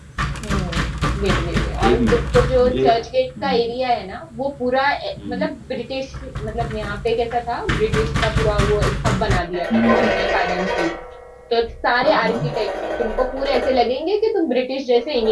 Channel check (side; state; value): both; identical; correlation 1.00